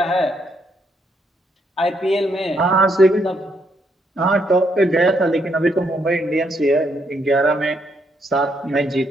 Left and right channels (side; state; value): both; normal; correlation 0.74